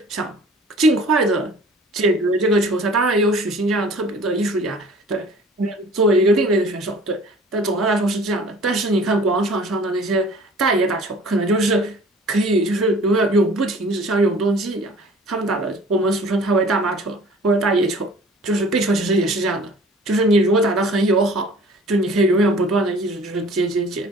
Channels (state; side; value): normal; both; correlation 0.49